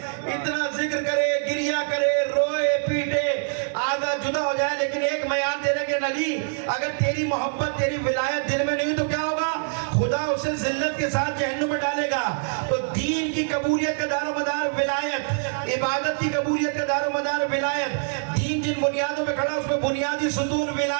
اتنا ذکر کرے, گریہ کرے, روئے پیٹے, آدھا جدا ہو جائے, معیار دے رہے کہ نبی اگر تیری محبت تیری ولایت دل میں نہیں تو کیا ہوگا؟ خدا اسے ذلت کے ساتھ جہنم میں ڈالے گا. تو دین کی قبولیت کا دار و مدار ولایت, عبادت کی قبولیت کا دار و مدار ولایت, دین جن بنیادوں پہ کھڑا اس میں بنیادی ستون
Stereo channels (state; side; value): silent; left; 62 dB below the other